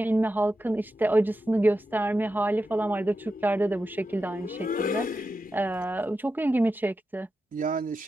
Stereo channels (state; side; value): normal; both; correlation 0.90